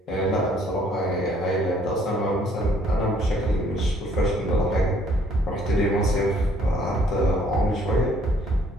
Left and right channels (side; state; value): both; normal; correlation 0.62